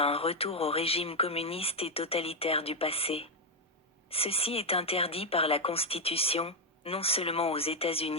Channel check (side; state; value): both; normal; correlation 0.02